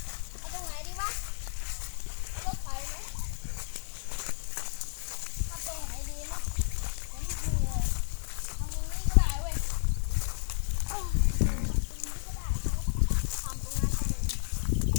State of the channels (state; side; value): silent; right; 57 dB below the other